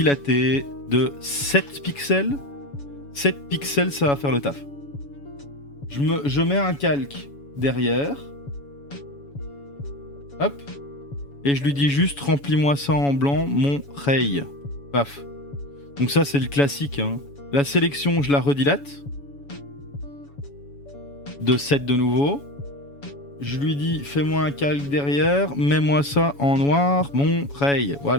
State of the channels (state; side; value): late; right; 7.1 ms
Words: de 7 pixels. 7 pixels, ça va faire le taf. Je mets un calque derrière. Hop. Et je lui dis juste, remplis-moi ça en blanc, mon ray. Paf. Donc ça, c'est le classique. Hein. La sélection, je la redilate. De 7 de nouveau. Je lui dis, fais-moi un calque derrière, mets-moi ça en noir, mon ray.